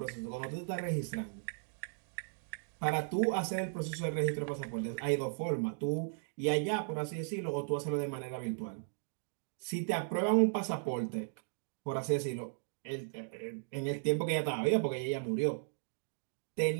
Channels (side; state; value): left; silent; digital silence